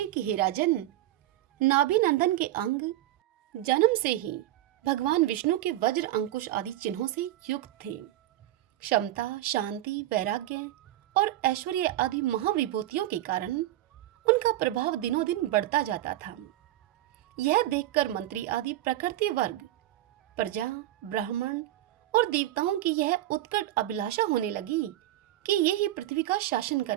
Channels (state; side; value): quieter; left; 14.6 dB